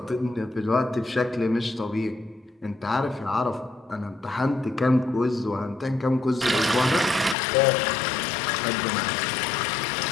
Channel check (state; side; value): drops out; right; at 7.4 s